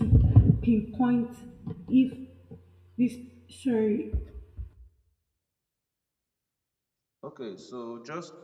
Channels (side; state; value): both; identical; correlation 1.00